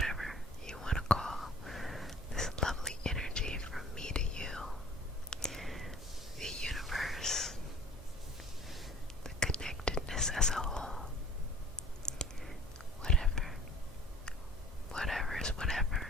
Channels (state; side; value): normal; both; correlation 0.49